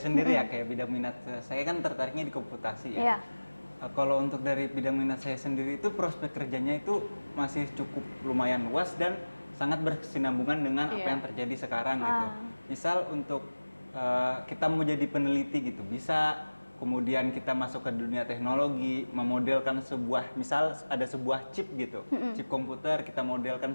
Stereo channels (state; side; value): inverted; both; correlation -1.00